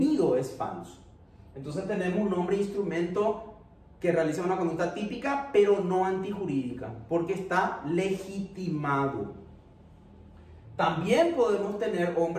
es falso. Entonces tenemos un hombre instrumento que realiza una conducta típica pero no antijurídica porque está legitimado. También podemos tener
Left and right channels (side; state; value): both; identical; correlation 1.00